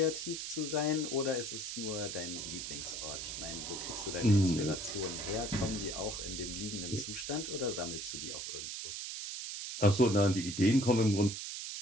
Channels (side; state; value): right; noise; hiss, 6 dB below the sound